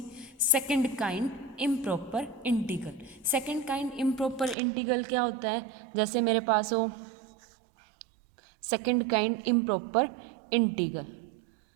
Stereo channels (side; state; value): left; drops out; at 4.5 s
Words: Second kind improper integral. Second kind improper integral क्या होता है? जैसे मेरे पास हो second kind improper integral.